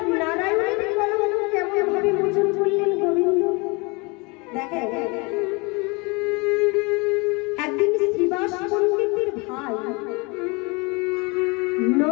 নারায়ণের কলঙ্ক কেমন ভাবে মোচন করলেন গোবিন্দ? দেখে একদিন শ্রীবাস পণ্ডিতের ভাই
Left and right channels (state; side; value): quieter; right; 28.3 dB